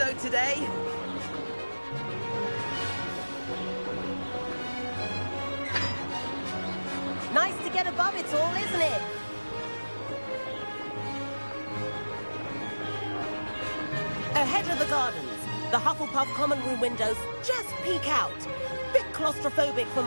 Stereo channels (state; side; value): inverted; both; correlation -1.00